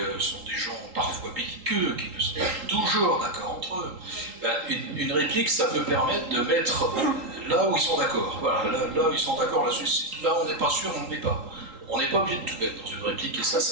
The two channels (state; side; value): late; left; 3.8 ms